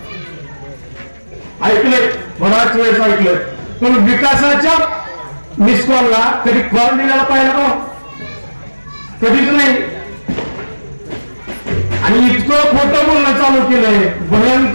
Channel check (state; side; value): inverted; both; correlation -1.00